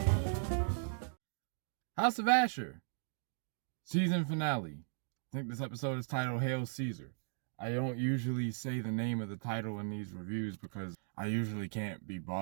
House of Ashur, season finale. I think this episode is titled Hail Caesar. I don't usually say the name of the title in these reviews because I usually can't be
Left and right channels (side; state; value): left; silent; digital silence